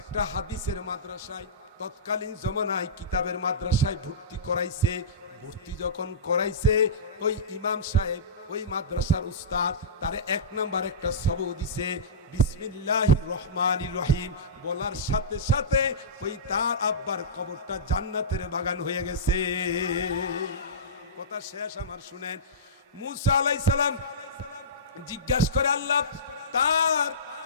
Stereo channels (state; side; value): normal; both; correlation -0.20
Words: হাদিসের মাদ্রাসায়, তৎকালীন জমানায় কিতাবের মাদ্রাসায় ভর্তি করাইছে। ভর্তি যখন করাইছে, ওই ইমাম সাহেব, ওই মাদ্রাসার উস্তাদ তারে 1 নাম্বার একটা সবক দিছে, বিসমিল্লাহির রহমানির রহিম বলার সাথে সাথে ওই তার আব্বার কবরটা জান্নাতের বাগান হয়ে গেছে। কথা শেষ আমার, শুনেন। মুসা আলাইহিস সালাম জিজ্ঞাসা করে, আল্লাহ,